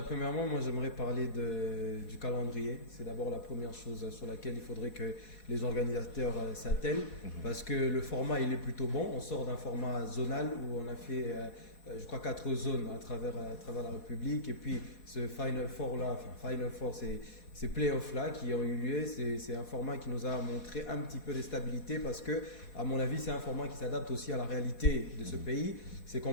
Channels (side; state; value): right; late; 4.2 ms